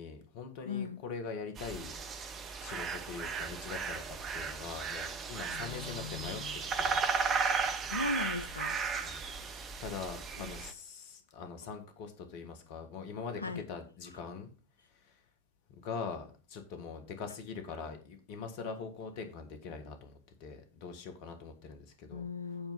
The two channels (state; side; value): normal; both; correlation 0.30